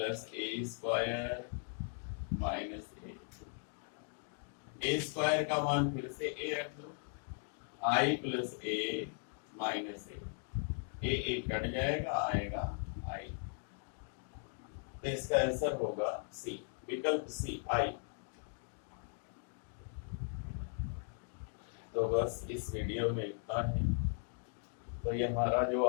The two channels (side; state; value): right; silent; 52 dB below the other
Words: ए स्क्वायर माइनस ए स्क्वायर का मान फिर से ए रख लो, आई प्लस ए माइनस ए कट जाएगा, आएगा आई। तो इसका आंसर होगा सी, विकल्प सी आई। तो बस इस वीडियो में इतना है। तो ये हमारा जो